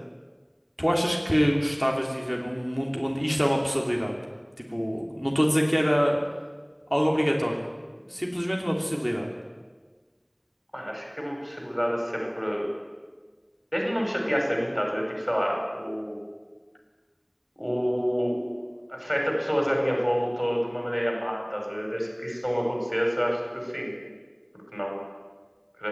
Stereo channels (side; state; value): both; identical; correlation 1.00